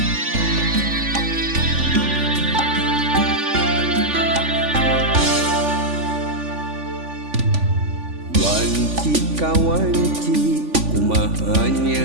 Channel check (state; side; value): late; left; 3.5 ms